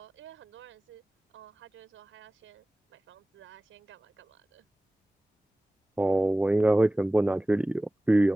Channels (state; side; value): normal; both; correlation 0.98